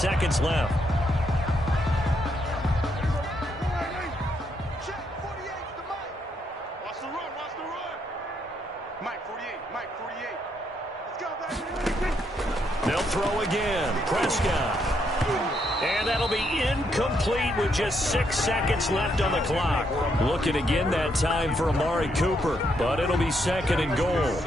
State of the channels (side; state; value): both; normal; correlation 0.76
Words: left. They'll throw again. Prescott. And that'll be incomplete with just 6 seconds left on the clock. Looking again that time for Amari Cooper, but it'll be 2nd and